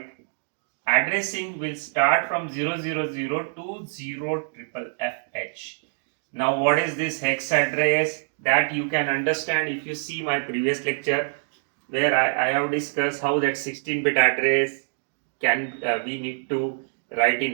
addressing will start from 000 to 0FFH. Now what is this hex address? That you can understand if you see my previous lecture, where I have discussed how that 16-bit address can we need to write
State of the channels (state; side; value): silent; left; digital silence